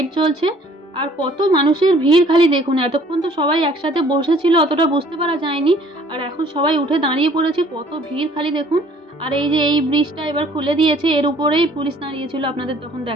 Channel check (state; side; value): normal; both; correlation 0.56